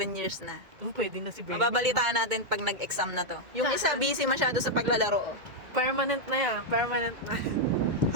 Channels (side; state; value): left; late; 2.0 ms